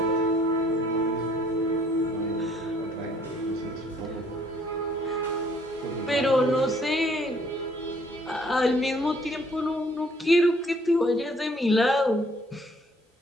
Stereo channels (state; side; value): normal; both; correlation 0.62